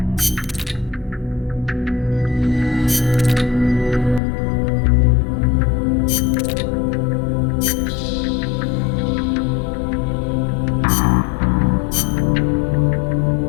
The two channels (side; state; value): right; drops out; at 4.2 s